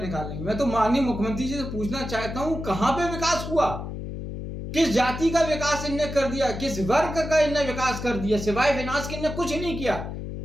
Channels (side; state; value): left; noise; hum, 7 dB below the sound